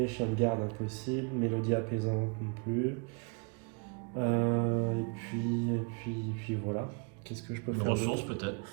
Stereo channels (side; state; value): left; quieter; 33.8 dB